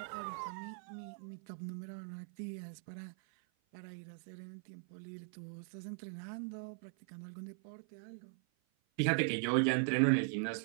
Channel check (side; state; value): left; silent; 51 dB below the other